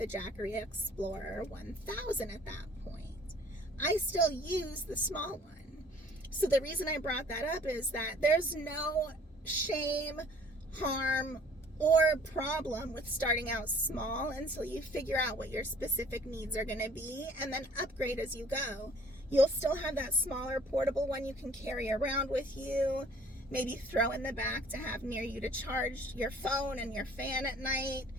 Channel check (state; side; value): normal; both; correlation 0.54